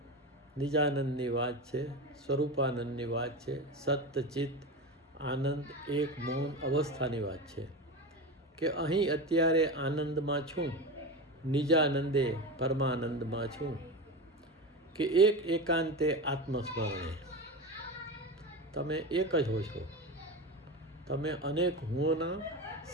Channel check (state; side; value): normal; both; correlation 0.23